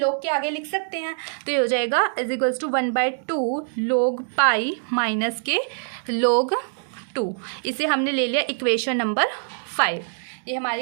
के आगे लिख सकते हैं, तो ये हो जाएगा is equals to 1/2 log π minus के log 2। इसे हमने ले लिया इक्वेशन नंबर 5। ये हमारी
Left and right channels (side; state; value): left; silent; digital silence